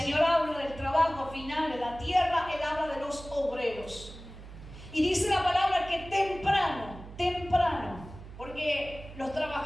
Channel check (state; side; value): noise; right; hum, 15 dB below the sound